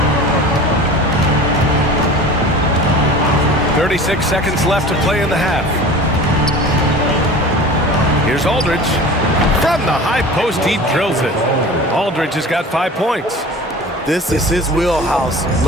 36 seconds left to play in the half. Here's Aldridge. From the high post, he drills it. Aldridge has got 5 points. This is his wheelhouse.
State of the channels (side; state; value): both; normal; correlation 0.38